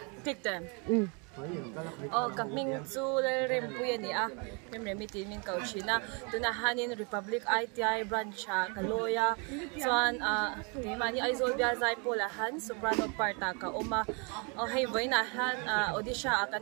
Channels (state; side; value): quieter; left; 34.2 dB